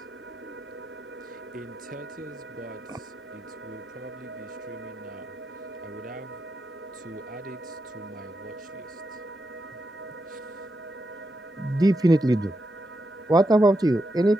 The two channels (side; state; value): both; normal; correlation 0.85